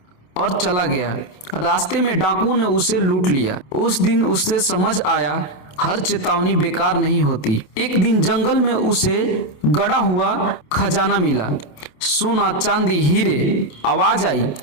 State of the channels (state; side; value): late; right; 28 ms